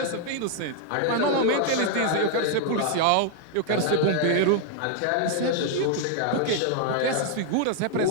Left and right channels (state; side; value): different; both; correlation 0.00